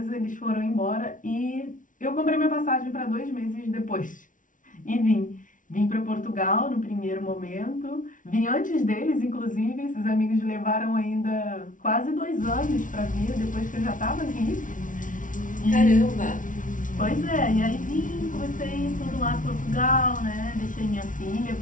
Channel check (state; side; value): late; right; 0.38 ms